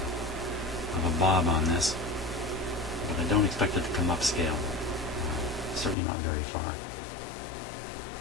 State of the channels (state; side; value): drops out; right; at 6.0 s